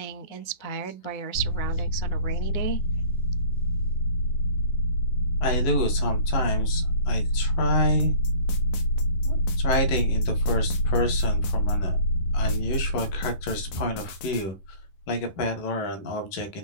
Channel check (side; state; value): right; late; 11 ms